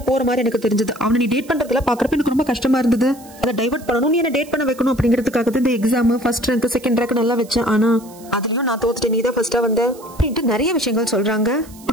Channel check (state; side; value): noise; right; hiss, 22 dB below the sound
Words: போற மாதிரி எனக்கு தெரிஞ்சது, அவனை நீ டேட் பண்றதுல பாக்குறப்ப எனக்கு ரொம்ப கஷ்டமா இருந்தது, அதை டைவர்ட் பண்ணணும், நீ என்ன டேட் பண்ண வைக்கணும் அப்படிங்கிறதுக்காக இந்த exam first rank second rank நல்லா வச்சேன், ஆனா அதுலயும் நான் தோத்துட்டேன், நீ தான் ஃபர்ஸ்டா வந்த அப்படின்ட்டு நிறைய விஷயங்கள் சொல்றாங்க.